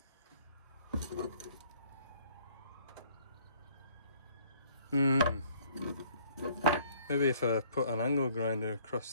Maybe if I put an angle grinder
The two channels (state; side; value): inverted; both; correlation -0.60